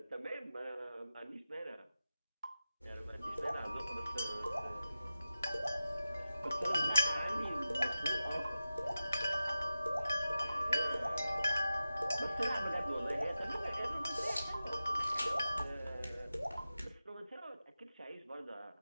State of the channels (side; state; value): both; inverted; correlation -0.94